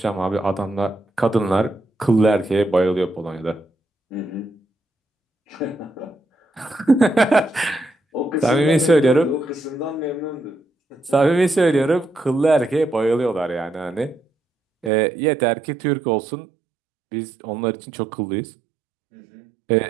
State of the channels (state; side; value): drops out; left; at 14.9 s